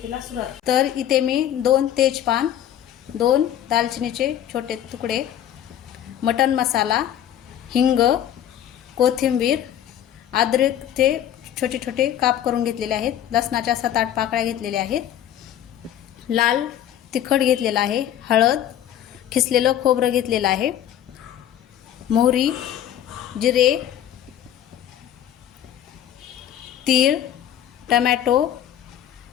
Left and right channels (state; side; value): quieter; right; 11.0 dB